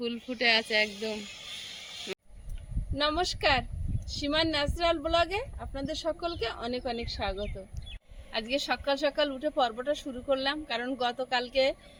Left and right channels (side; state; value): both; identical; correlation 1.00